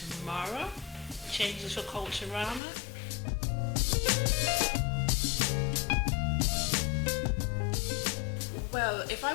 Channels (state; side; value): drops out; right; at 2.6 s